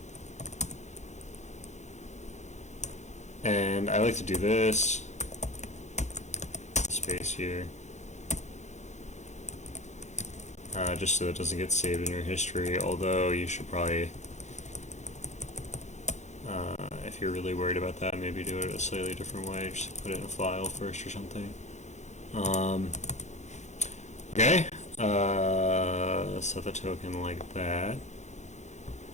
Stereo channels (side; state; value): right; late; 0.34 ms